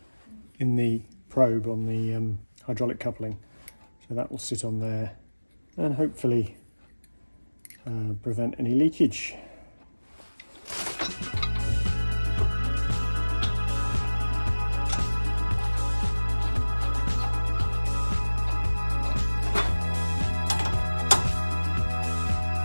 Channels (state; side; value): inverted; both; correlation -1.00